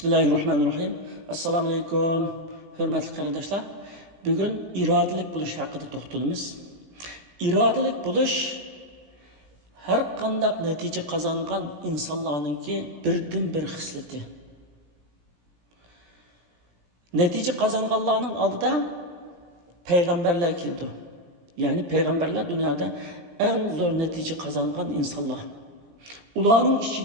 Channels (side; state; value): left; late; 17 ms